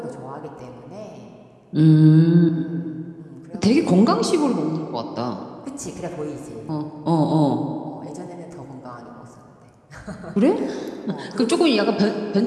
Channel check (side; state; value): both; identical; correlation 1.00